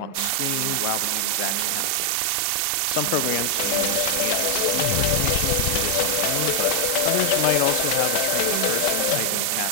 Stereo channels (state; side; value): different; both; correlation 0.00